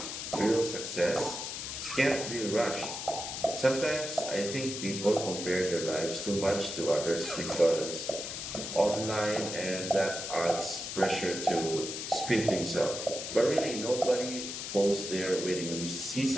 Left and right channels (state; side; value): noise; left; hiss, 6 dB below the sound